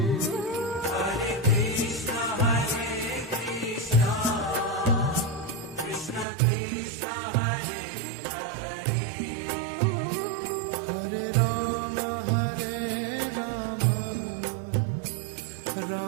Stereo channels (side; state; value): left; drops out; at 6.2 s